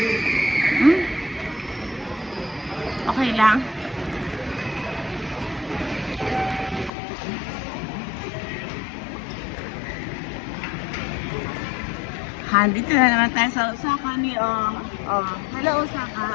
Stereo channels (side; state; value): right; drops out; at 6.9 s